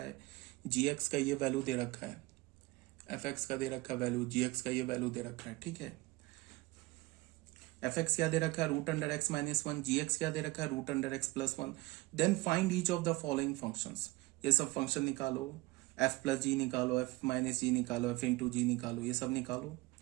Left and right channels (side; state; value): left; quieter; 21.1 dB